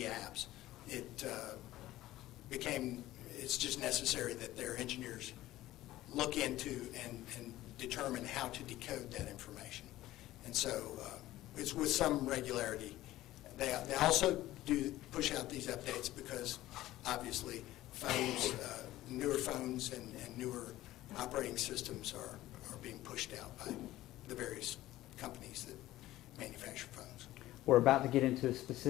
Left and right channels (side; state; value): right; quieter; 15.6 dB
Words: apps. It's just necessary that their engineers look into and determine how to decode that information. And so it's with some regularity. They also do push out these updates because obviously phones, newer phones and newer operating systems are being pushed out by the various companies that manufacture phones. We're about to get into a